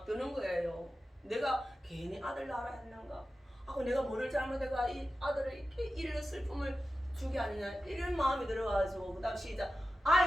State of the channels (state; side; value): normal; both; correlation 0.93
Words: 드는 거예요. 내가 괜히 아들 낳으라 했는가? 내가 뭐를 잘못해가 이 아들을 이렇게 이런 슬픔을 주게 아니냐 이런 마음이 들어가지고 그 다음 시작.